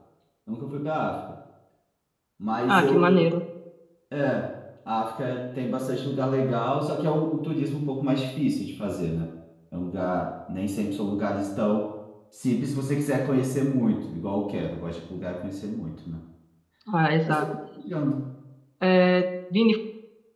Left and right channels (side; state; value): both; identical; correlation 1.00